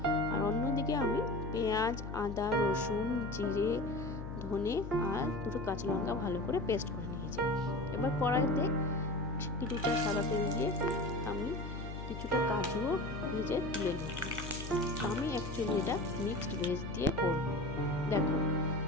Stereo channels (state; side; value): noise; left; hum, 8 dB below the sound